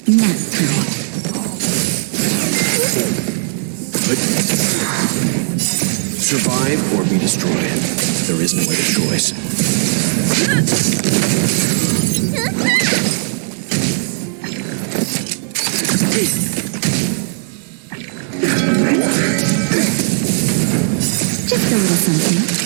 Nap time. Survive or be destroyed. There is no other choice. Just a little something.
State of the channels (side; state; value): left; silent; digital silence